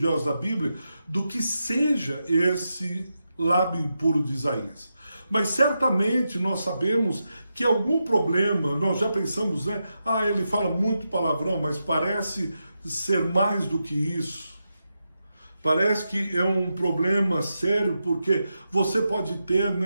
da Bíblia do que seja esse lábio impuro de Isaías. Mas certamente nós sabemos que algum problema, nós já pensamos, né? Ele fala muito palavrão, mas parece ser mais do que isso. Parece que é um problema sério, porque você pode ter,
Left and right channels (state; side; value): inverted; both; correlation -0.88